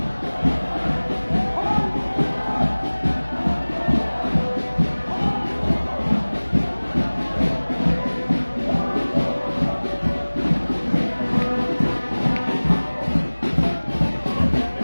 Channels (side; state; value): both; inverted; correlation -1.00